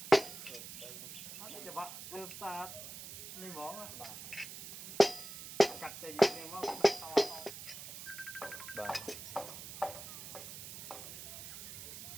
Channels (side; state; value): right; noise; hiss, 10 dB below the sound